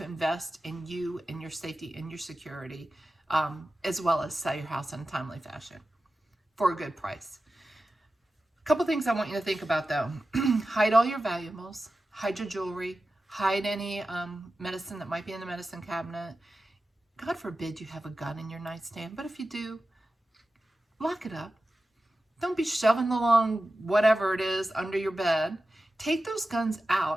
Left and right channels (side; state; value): both; normal; correlation 0.94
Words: invest in you and your safety and your security, as well as sell your house in a timely fashion for a good price. A couple things I want you to think about though. Hide all your valuables, hide your jewelry, hide any medicine that might be in the medicine cabinet. God forbid you have a gun in your nightstand, but if you do, lock it up. Don't be shoving along whatever it is under your bed. Take those guns